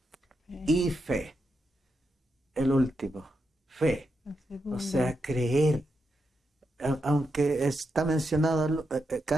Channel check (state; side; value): normal; both; correlation 0.84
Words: y fe. El último, fe. O sea, creer. Aunque está mencionado